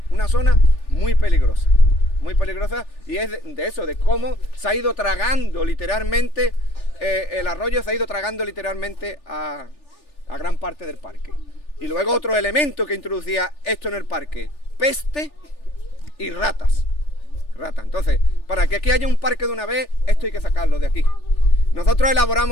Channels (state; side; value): late; right; 3.4 ms